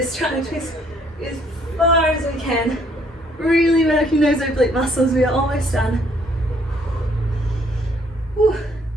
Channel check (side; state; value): both; normal; correlation 0.65